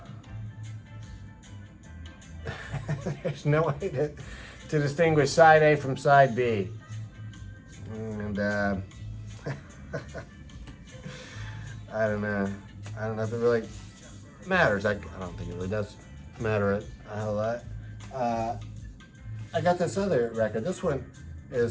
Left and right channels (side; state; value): both; identical; correlation 1.00